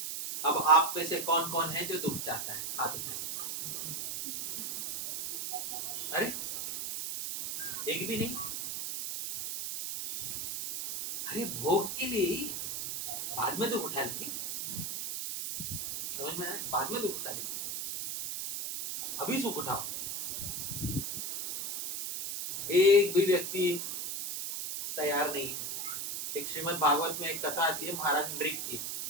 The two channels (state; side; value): noise; right; hiss, 4 dB below the sound